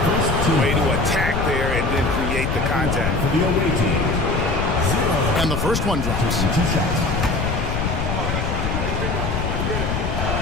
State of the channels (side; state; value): left; noise; rumble, 1 dB below the sound